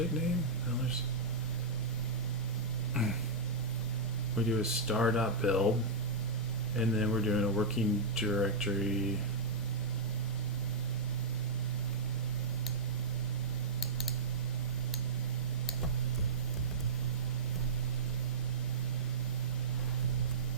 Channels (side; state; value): left; quieter; 3.0 dB